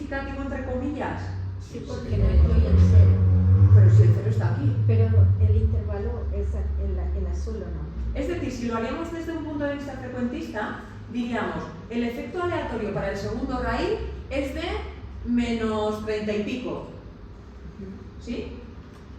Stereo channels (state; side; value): identical; both; correlation 1.00